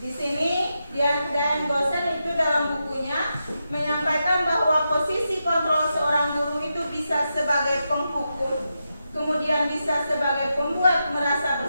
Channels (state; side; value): inverted; both; correlation -0.87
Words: sini Dian Gosen itu dalam bukunya menyampaikan bahwa posisi kontrol seorang guru itu bisa sebagai penghukum, kemudian bisa sebagai pembuat merasa